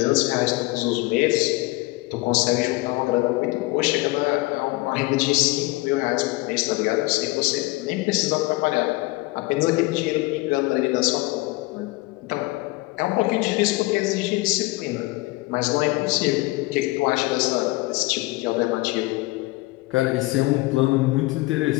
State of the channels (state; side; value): quieter; right; 21.6 dB